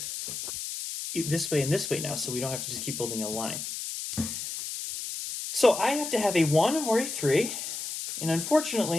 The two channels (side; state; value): left; noise; hiss, 6 dB below the sound